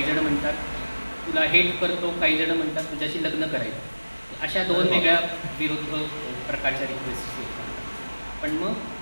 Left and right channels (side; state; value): both; inverted; correlation -1.00